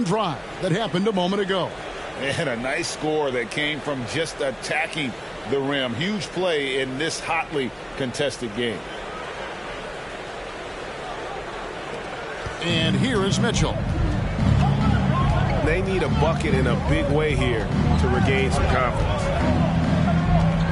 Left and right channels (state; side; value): identical; both; correlation 1.00